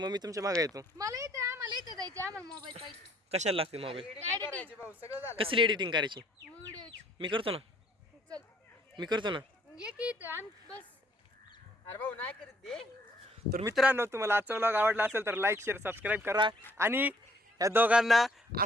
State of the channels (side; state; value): both; normal; correlation 0.64